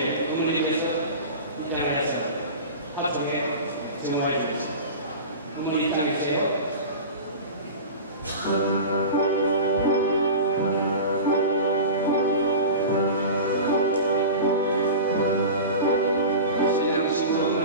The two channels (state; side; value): inverted; both; correlation -0.32